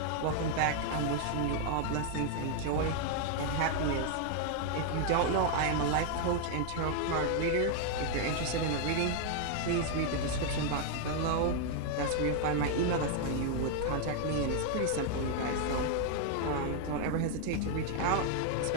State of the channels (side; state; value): both; different; correlation 0.00